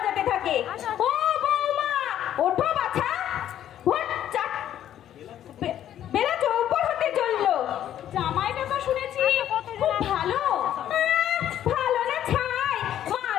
থাকে। ও বৌমা, ওঠো বাছা, ভোর 4 বেলা 4 হতে চললো। জামাইটা তো শুনেছি খুব ভালো। ভালো না ছাই, মা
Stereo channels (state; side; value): quieter; right; 11.1 dB